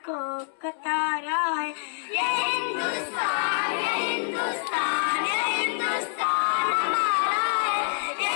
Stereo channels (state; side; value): silent; right; 59 dB below the other